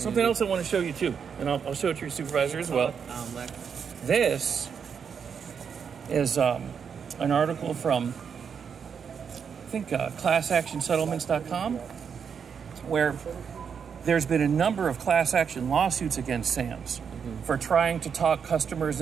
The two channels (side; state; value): left; quieter; 6.8 dB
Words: else I want to show you, too. And I'll show it to your supervisor as well. This is an article from, I think, ClassActionSettlements.com, where there's been a number of class action lawsuits against Sam's for trying to talk customers